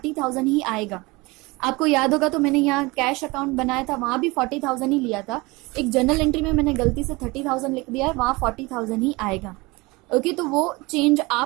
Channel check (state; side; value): quieter; left; 23.8 dB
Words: ही आएगा। आपको याद होगा तो मैंने यहाँ कैश अकाउंट बनाया था, वहां भी 40,000 ही लिया था। एक जर्नल एंट्री में मैंने गलती से 30,000 लिख दिया है, वहां 40,000 ही आएगा। ओके, तो वो चेंज